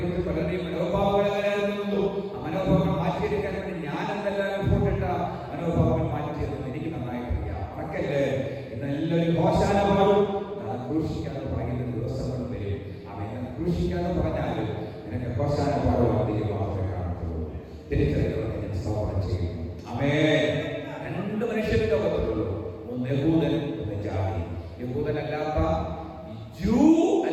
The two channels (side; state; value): both; identical; correlation 1.00